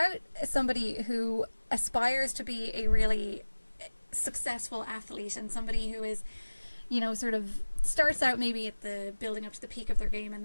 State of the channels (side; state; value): both; inverted; correlation -1.00